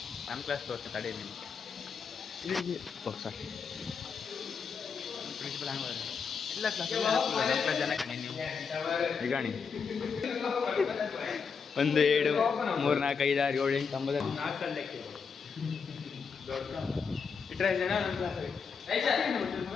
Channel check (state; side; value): quieter; right; 5.8 dB